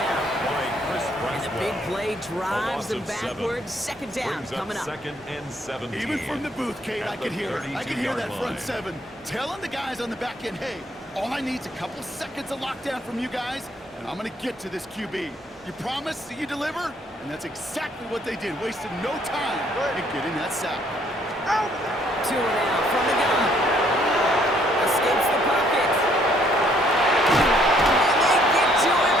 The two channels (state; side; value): normal; both; correlation 0.66